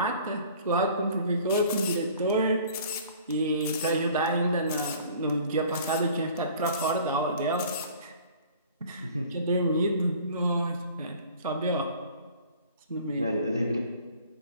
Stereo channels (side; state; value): both; inverted; correlation -0.49